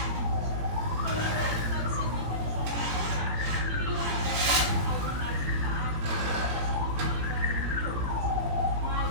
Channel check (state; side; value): late; left; 18 ms